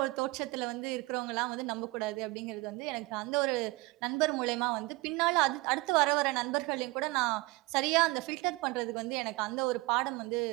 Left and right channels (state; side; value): quieter; left; 23.1 dB